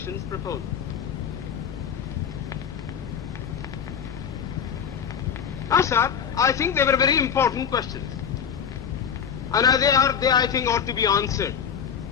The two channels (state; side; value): quieter; right; 7.6 dB